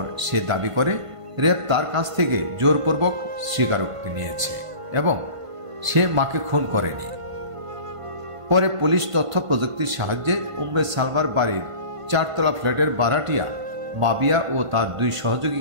সে দাবি করে র্যাব তার কাছ থেকে জোরপূর্বক স্বীকারোক্তি নিয়েছে এবং সে মাকে খুন করেনি। পরে পুলিশ তথ্য প্রযুক্তির সাহায্যে উম্মে সালমার বাড়ির 4 তলা ফ্ল্যাটের ভাড়াটিয়া মাবিয়া ও তার 2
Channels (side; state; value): left; late; 1.5 ms